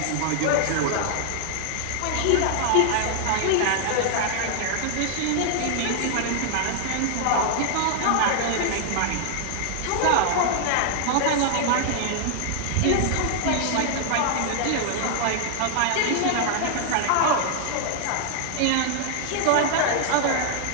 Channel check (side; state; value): both; different; correlation 0.00